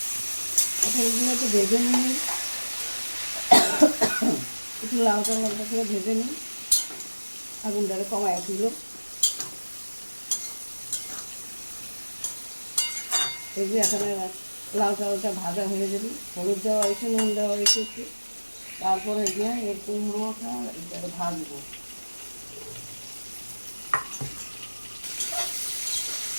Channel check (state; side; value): inverted; both; correlation -1.00